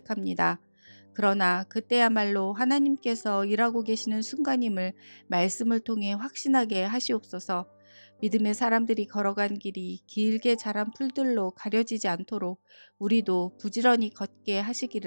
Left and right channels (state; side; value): inverted; both; correlation -1.00